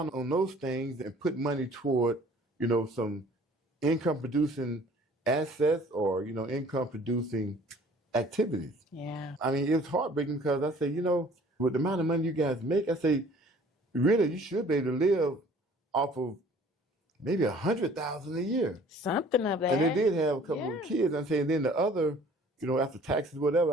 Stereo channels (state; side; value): normal; both; correlation 0.52